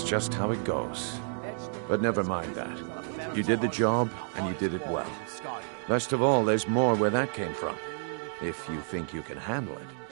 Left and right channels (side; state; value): left; silent; digital silence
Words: just how it goes. But never mind that. You did the job, and you did it well. Best of all, there's more where that came from. If you think you can handle it.